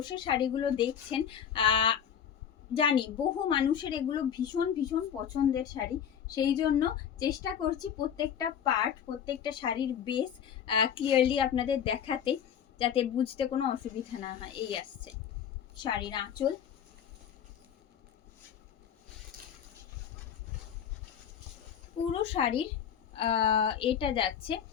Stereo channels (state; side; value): quieter; right; 8.7 dB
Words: শাড়িগুলো দেখছেন, জানি বহু মানুষের এগুলো ভীষণ ভীষণ পছন্দের শাড়ি, সেই জন্য চেষ্টা করছি প্রত্যেকটা পার্ট, প্রত্যেকটা শাড়ির বেস ক্লিয়ারলি আপনাদের দেখাতে, যাতে বুঝতে কোনো অসুবিধা না হয়। এই আসছে শাড়ির আঁচল, পুরো শাড়ির এটা যাচ্ছে,